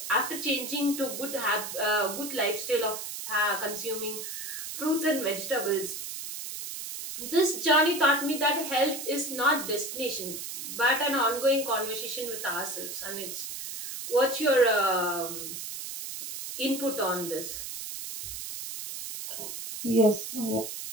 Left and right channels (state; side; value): noise; right; hiss, 7 dB below the sound